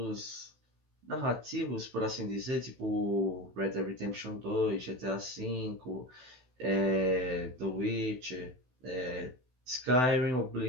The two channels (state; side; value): late; left; 16 ms